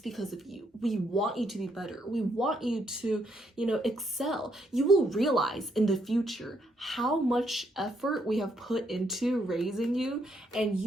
because of you. We want you to be better. We want you to, excel. You will realize in the future how much effort we have put into raising you, and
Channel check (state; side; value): normal; both; correlation 0.74